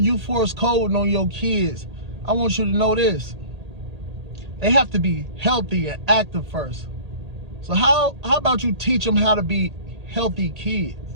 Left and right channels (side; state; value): left; late; 1.8 ms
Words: force coding on your kids, I want you to know this. They have to be healthy and active first. So how about you teach them how to be healthy kids?